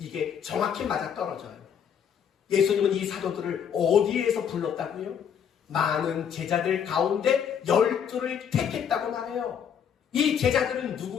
정확히 맞아떨어져요. 예수님은 이 사도들을 어디에서 불렀다고요? 많은 제자들 가운데 12를 택했다고 말해요. 이 제자들은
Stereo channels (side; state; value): right; quieter; 8.0 dB